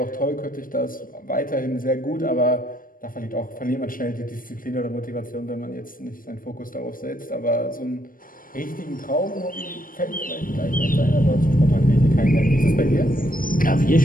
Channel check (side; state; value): right; late; 0.40 ms